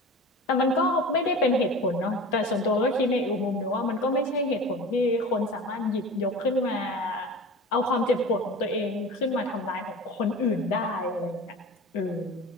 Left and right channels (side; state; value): both; normal; correlation 0.35